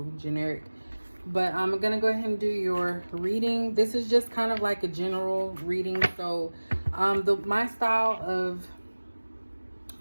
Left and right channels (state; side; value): inverted; both; correlation -1.00